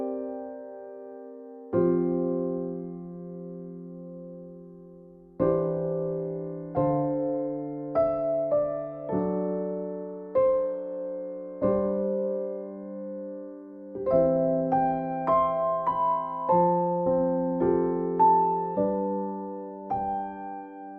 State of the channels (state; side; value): identical; both; correlation 1.00